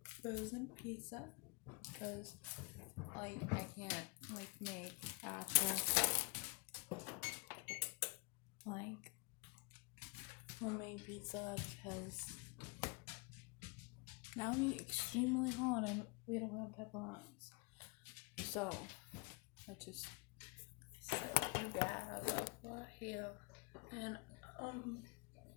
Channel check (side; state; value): right; quieter; 26.9 dB